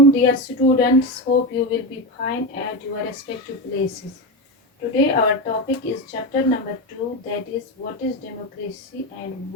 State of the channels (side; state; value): both; normal; correlation 0.16